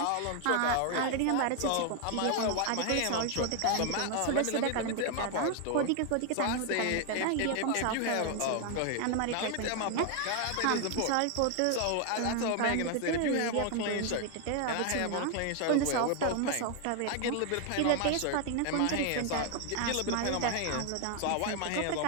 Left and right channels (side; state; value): both; different; correlation 0.00